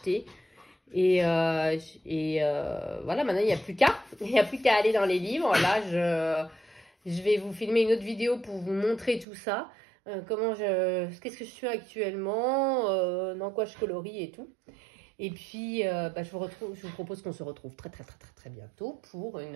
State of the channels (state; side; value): drops out; left; at 9.2 s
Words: Et voilà, maintenant, il n'y a plus qu'à. Il n'y a plus qu'à aller dans les livres. Là, je vais vous filmer une autre vidéo pour vous montrer tout ça. Qu'est-ce que je fais actuellement, dans quoi je colorie et tout. Et puis, je vous propose qu'on se retrouve très bientôt pour